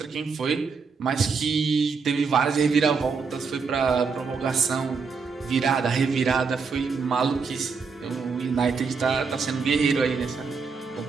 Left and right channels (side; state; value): left; quieter; 5.2 dB